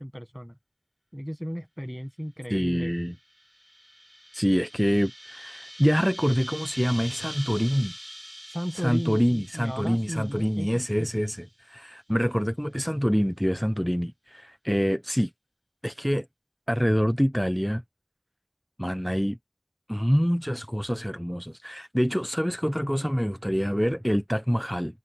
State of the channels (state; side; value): identical; both; correlation 1.00